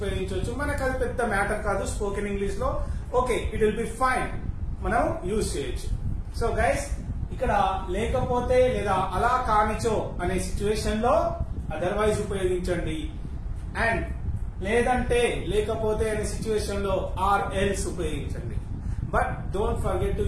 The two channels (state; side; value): identical; both; correlation 1.00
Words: మనకు అది పెద్ద మ్యాటర్ కాదు స్పోకెన్ ఇంగ్లీష్ లో. Okay, it will be fine, మనం యూజ్ చేయొచ్చు. సో గైస్, ఇక్కడ లేకపోతే లేదా అలా కానిచో అనే సిచ్యువేషన్ లో అదర్వైజ్ ఉపయోగించండి, అండ్ లేదంటే లేకపోతే అనే సిచ్యువేషన్ లో ఆర్ ఎల్స్ ఉపయోగించండి. But don't forget to